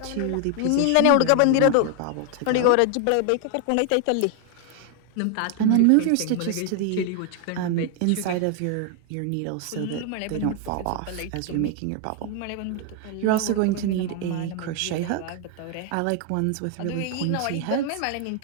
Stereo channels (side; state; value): both; different; correlation 0.00